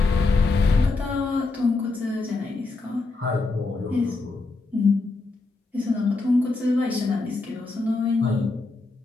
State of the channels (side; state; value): right; quieter; 3.6 dB